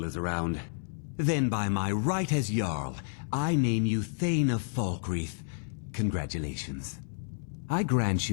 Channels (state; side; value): silent; right; digital silence